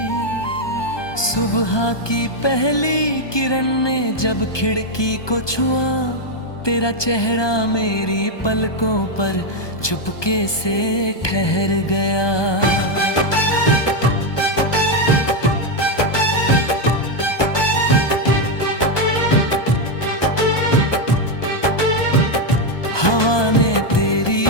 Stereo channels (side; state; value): right; late; 1.2 ms